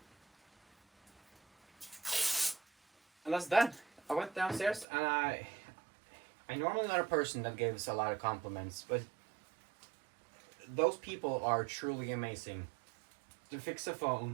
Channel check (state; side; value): drops out; left; at 4.9 s